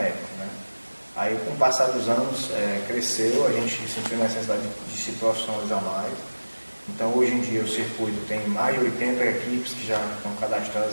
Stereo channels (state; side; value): inverted; both; correlation -1.00